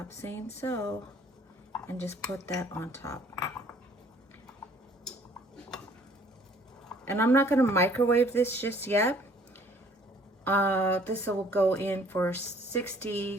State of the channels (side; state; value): both; normal; correlation 0.57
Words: Saying So, and just put that on top. And I'm not going to microwave this just yet. This will go in for 60